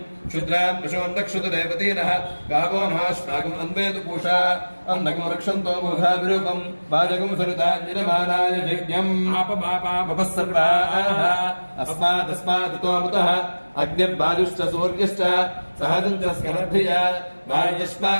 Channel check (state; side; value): inverted; both; correlation -1.00